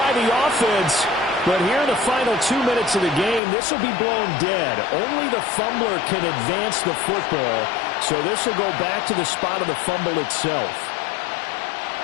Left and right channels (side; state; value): right; drops out; at 3.4 s